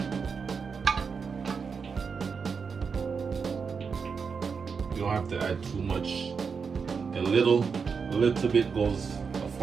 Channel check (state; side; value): quieter; left; 5.7 dB